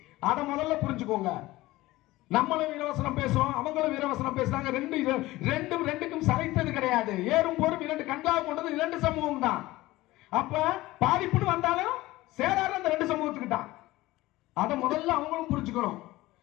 அதை முதல்ல புரிஞ்சுக்கோங்க. நம்மளும் வீரவசனம் பேசுறோம், அவங்களும் வீரவசனம் பேசுறாங்க. ரெண்டுக்கும் சளைத்தது கிடையாது. ஏறும் போரும் 2 கண்களாக கொண்டது 2 சமூகம் தான். அப்ப பாதிப்புன்னு வந்தாலும் சேராத அந்த 2 சமூகத்துக்கு தான். அதை முதல்ல அவங்களும் புரிஞ்சுக்கணும்.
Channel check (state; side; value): quieter; right; 18.3 dB